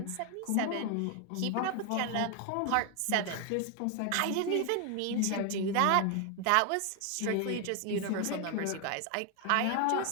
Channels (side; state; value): both; different; correlation 0.01